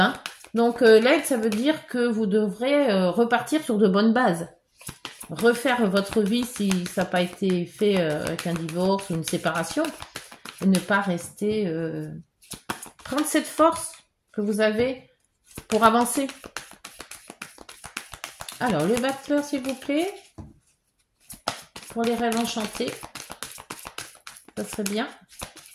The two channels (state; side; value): identical; both; correlation 1.00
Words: Donc, l'aide, ça veut dire que vous devrez repartir sur de bonnes bases. Refaire votre vie si ça n'a pas été fait avec un divorce ou une séparation. Et ne pas rester... prendre cette force que vous avez pour avancer. Alors, le battleur, s'il vous plaît. Pour les rêves enchantés. Ça serait bien.